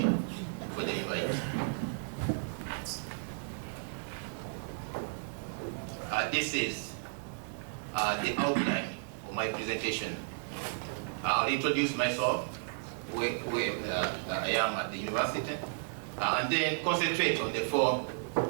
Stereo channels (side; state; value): left; silent; digital silence